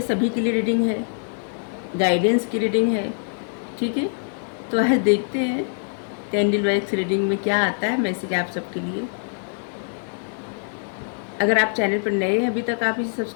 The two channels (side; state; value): right; silent; 63 dB below the other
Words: सभी के लिए रीडिंग है, गाइडेंस की रीडिंग है, ठीक है। तो आज देखते हैं कैंडल वैक्स रीडिंग में क्या आता है मैसेज आप सबके लिए। अगर आप चैनल पर नए हैं, अभी तक आप इसे